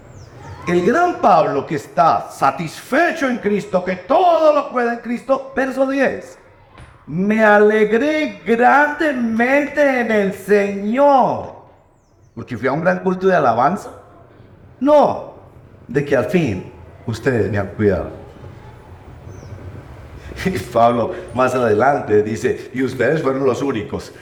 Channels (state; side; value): identical; both; correlation 1.00